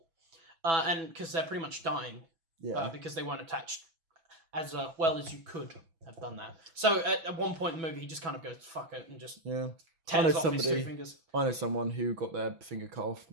and because they're pretty much dying, because they weren't attached as well as you could have done that. So at one point in the movie, he just kind of goes "fuck it" and just tears off his two fingers. I know someone who got their finger cut off.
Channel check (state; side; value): late; left; 6.1 ms